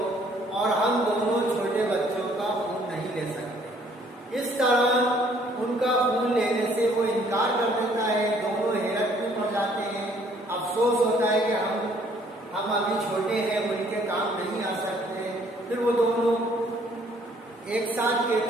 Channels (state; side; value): normal; both; correlation 0.61